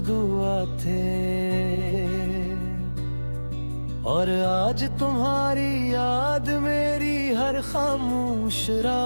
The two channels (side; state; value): both; inverted; correlation -1.00